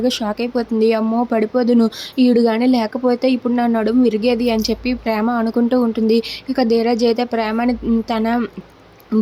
షాక్ అయిపోతుంది. అమ్మో! పడిపోదును, ఈడు గాని లేకపోతే ఇప్పుడు నా నడుము విరిగేది అని చెప్పి ప్రేమ అనుకుంటూ ఉంటుంది. ఇక ధీరజ్ అయితే ప్రేమని తన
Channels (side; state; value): both; identical; correlation 1.00